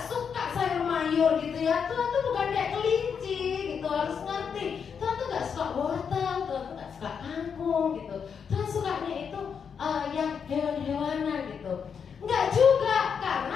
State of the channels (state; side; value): quieter; right; 6.8 dB